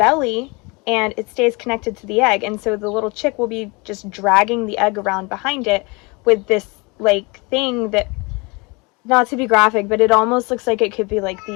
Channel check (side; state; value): right; quieter; 27.6 dB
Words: and it stays connected to the egg, and so the little chick will be just dragging the egg around behind it with this like thing that, not to be graphic, but it almost looks like it could be like